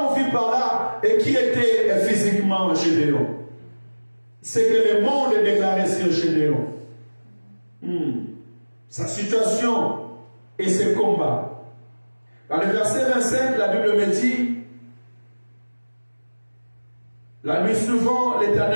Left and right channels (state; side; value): inverted; both; correlation -1.00